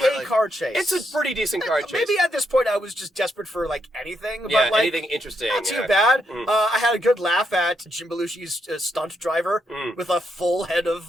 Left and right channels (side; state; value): both; normal; correlation 0.79